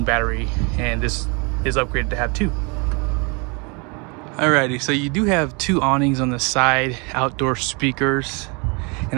battery, and this is upgraded to have two. Alrighty, so you do have two awnings on the side, outdoor speakers,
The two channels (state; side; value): quieter; left; 31.4 dB